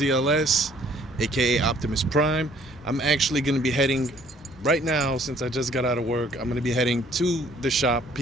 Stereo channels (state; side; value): normal; both; correlation 0.60